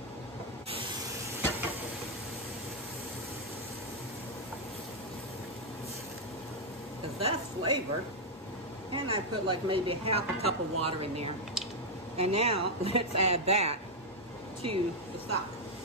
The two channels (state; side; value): normal; both; correlation -0.01